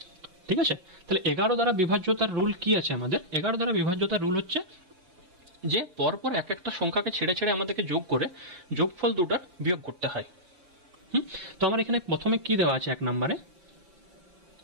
ঠিক আছে, তাহলে 11 দ্বারা বিভাজ্যতার রুল কি আছে আমাদের? 11 দ্বারা বিভাজ্যতার রুল হচ্ছে যে পরপর এক একটা সংখ্যাকে ছেড়ে ছেড়ে আমাদেরকে যোগ করে যোগফল দুটার বিয়োগ করতে হয়। তো আমার এখানে প্রথমে কি দেওয়া আছে? এক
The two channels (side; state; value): left; late; 5.6 ms